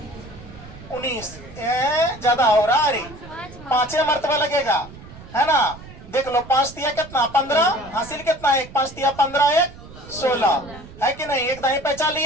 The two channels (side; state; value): right; noise; rumble, 17 dB below the sound